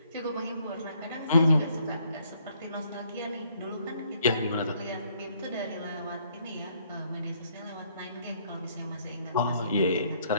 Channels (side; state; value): both; inverted; correlation -0.67